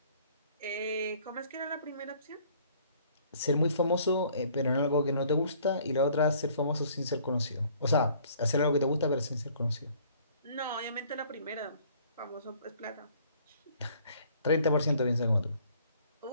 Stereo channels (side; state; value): both; inverted; correlation -0.58